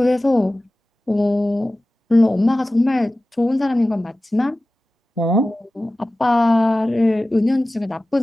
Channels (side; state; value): both; normal; correlation 0.96